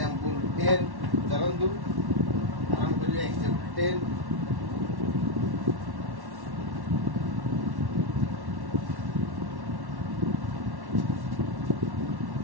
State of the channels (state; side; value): late; left; 1.1 ms